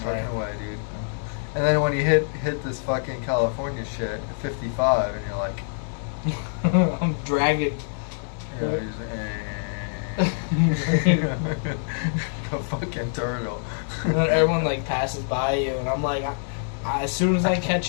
trucking Right. away, dude. And then when you hit this fucking California shit at 55, and you're like, I'm dragging. you know, you're just, a fucking turtle. And then everyone like passes by you, and I'm like, as soon as I catch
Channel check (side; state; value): right; silent; digital silence